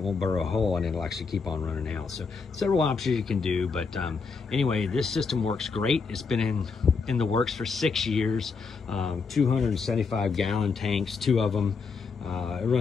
won't burrow a hole and it'll actually keep on running out. So several options you can do, but anyway, this system works great. It's been in the works for 6 years. 275 gallon tanks, 2 of them. I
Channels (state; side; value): quieter; right; 4.9 dB